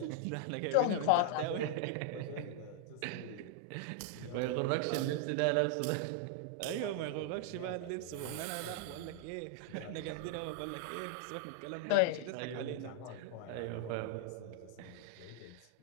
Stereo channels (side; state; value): both; different; correlation 0.00